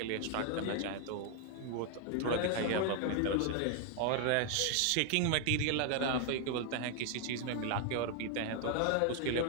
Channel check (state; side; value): different; both; correlation 0.00